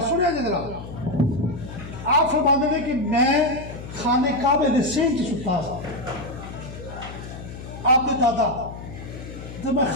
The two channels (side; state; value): left; noise; hum, 12 dB below the sound